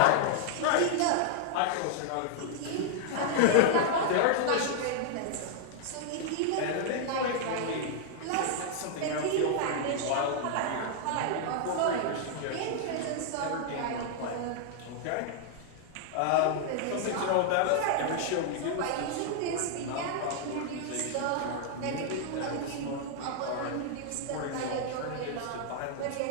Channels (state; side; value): different; both; correlation -0.01